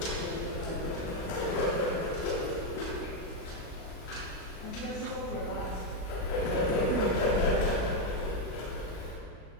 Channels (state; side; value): late; right; 38 ms